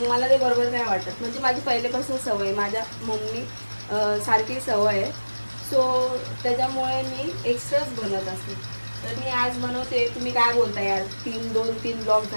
मला ते बरोबर नाही वाटत. म्हणजे माझी पहिल्यापासून सवय, माझ्या मम्मी सारखी सवय आहे. सो त्याच्यामुळे मी एक्स्ट्राच बनवत असते. तर मी आज बनवते. तुम्ही काय बोलता यार, 2-3 ब्लॉग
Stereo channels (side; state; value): both; inverted; correlation -1.00